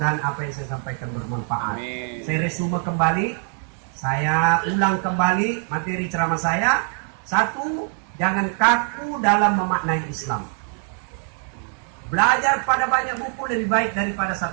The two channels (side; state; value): left; quieter; 39.9 dB